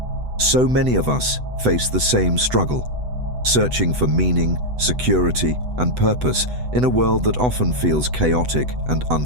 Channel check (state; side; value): late; left; 8.0 ms